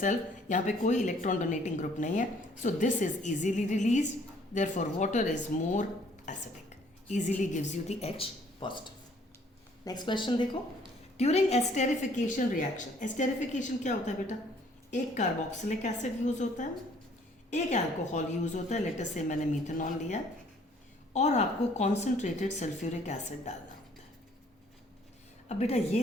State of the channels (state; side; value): normal; both; correlation 0.60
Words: यहाँ पे कोई electron donating group नहीं है, so this is easily released, therefore water is more acidic, easily gives you the H positive। Next question देखो, during esterification reaction, esterification क्या होता है बेटा? एक कार्बोक्सिलिक एसिड यूज होता है, एक अल्कोहल यूज होता है, लेटर से मैंने मीथेनॉल लिया, और आपको कॉन्सेंट्रेटेड सल्फ्यूरिक एसिड डालना होता है। अब बेटा ये